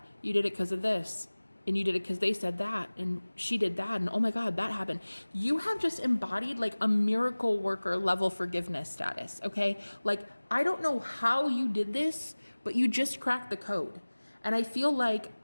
You did it because of this. And you did it because they said that, and she did that, and oh my God, that happened. You have just embodied like a miracle worker level forgiveness status, okay? Like, I don't know how you did this, but you just cracked the code. And I feel like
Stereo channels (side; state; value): both; inverted; correlation -1.00